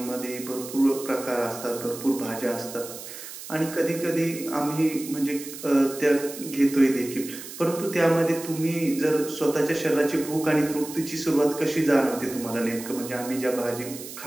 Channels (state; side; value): noise; right; hiss, 12 dB below the sound